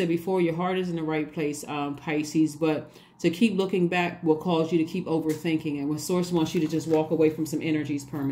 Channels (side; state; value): both; identical; correlation 1.00